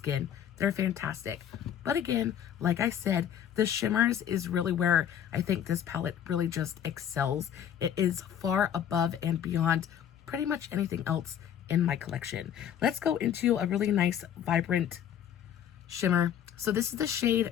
They're fantastic. But again, like I said, the shimmers is really where I think this palette really just excels. It is far above and beyond pretty much anything else in my collection. Let's go into a really nice, vibrant shimmer. So this is the shade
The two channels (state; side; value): quieter; right; 9.5 dB